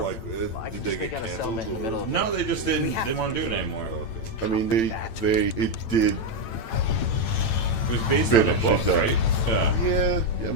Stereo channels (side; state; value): right; late; 8.9 ms